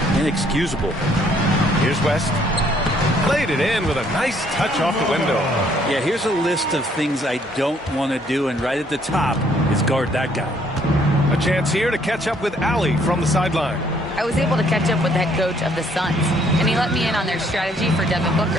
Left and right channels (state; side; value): normal; both; correlation 0.65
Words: Inexcusable. Here's West. Played it in with a nice touch off the window. Yeah, here's a list of things I don't want to do, and right at the top is guard that guy. A chance here to catch up with Allie from the sideline. I was able to catch up with the head coach of the Suns, and he let me in on their strategy for Devin